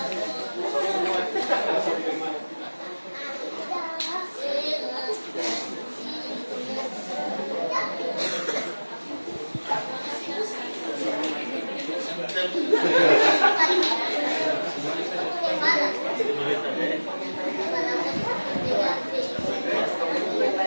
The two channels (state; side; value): inverted; both; correlation -1.00